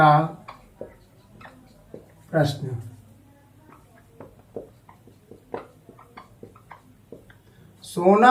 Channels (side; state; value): both; identical; correlation 1.00